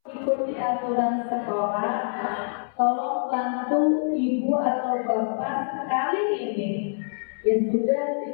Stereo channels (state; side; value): silent; right; 61 dB below the other